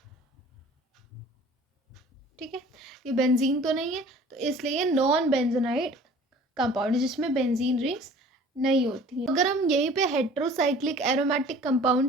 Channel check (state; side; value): normal; both; correlation 0.48